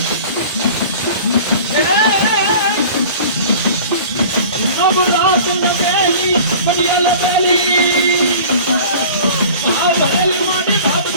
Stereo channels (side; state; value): both; inverted; correlation -0.42